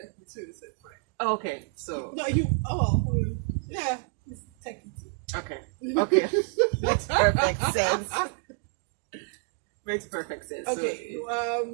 too, so it's fine. okay, so. No, yeah, he's techie too. Okay. Makes perfect sense. Makes perfect sense. Okay.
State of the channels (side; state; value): left; quieter; 38.7 dB